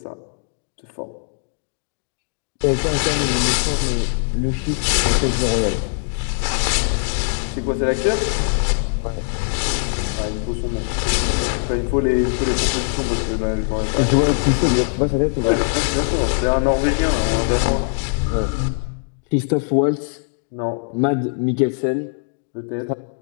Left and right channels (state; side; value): silent; right; digital silence